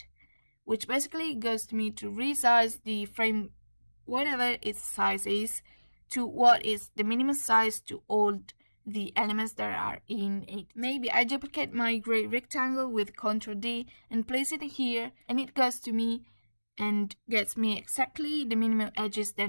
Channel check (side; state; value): both; inverted; correlation -1.00